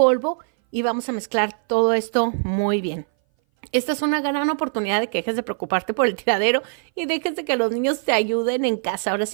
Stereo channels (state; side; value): silent; left; 59 dB below the other